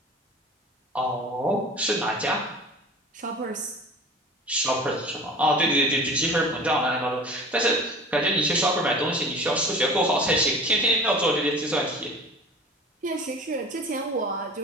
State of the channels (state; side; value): normal; both; correlation 0.40